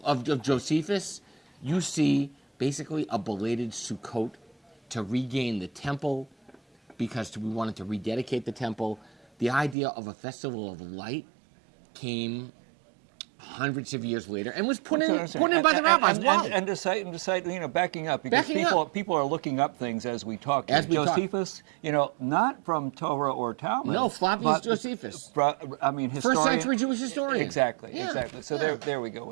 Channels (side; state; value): left; drops out; at 9.8 s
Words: Josephus? You see basically a belated Sukkot to regain the temple because we wanted to rededicate the temple. The idea of a festival of light came hundreds of years later and was put in by the rabbis. Why? And to cite, backing up, because people are looking up things as we talk. Josephus, not from Torah or Talmud. No, Flavius Josephus. Historian. First century Jewish historian. Exactly. So there we go